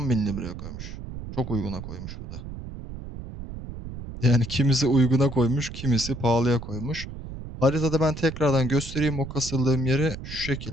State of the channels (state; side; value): noise; right; rumble, 10 dB below the sound